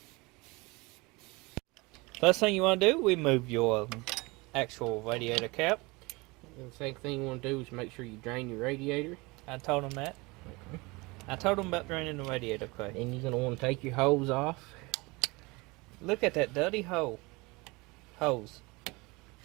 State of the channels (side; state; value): left; quieter; 24.8 dB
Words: First thing you want to do, remove your actual radiator cap. And the second thing you want to do is make sure you drain your radiator. I told him that. Okay. I told him about draining the radiator, Clay. And you're going to want to take your hose off. Look at that dirty hose.